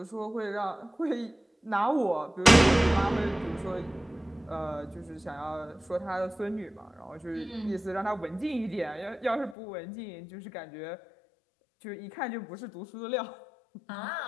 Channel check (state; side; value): drops out; right; at 9.6 s